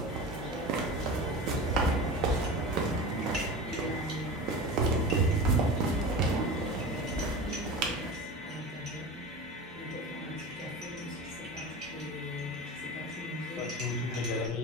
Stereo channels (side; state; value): both; normal; correlation 0.31